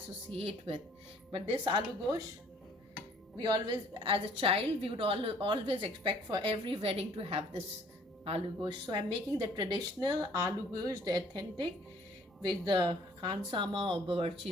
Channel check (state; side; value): normal; both; correlation 0.58